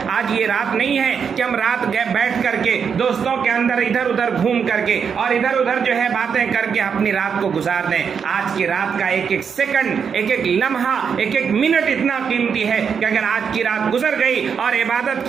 آج یہ رات نہیں ہے کہ ہم رات بیٹھ کر کے دوستوں کے اندر ادھر ادھر گھوم کر کے اور ادھر ادھر جو ہے باتیں کر کے اپنی رات کو گزار دیں۔ آج کی رات کا ایک ایک سیکنڈ، ایک ایک لمحہ، ایک ایک منٹ اتنا قیمتی ہے کہ اگر آج کی رات گزر گئی اور عبادت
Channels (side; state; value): left; quieter; 6.7 dB